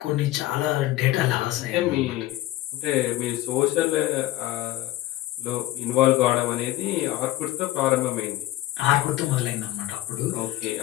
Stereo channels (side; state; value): right; quieter; 15.8 dB